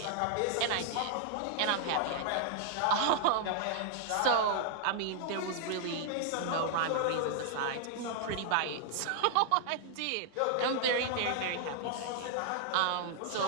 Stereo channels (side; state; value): both; different; correlation -0.01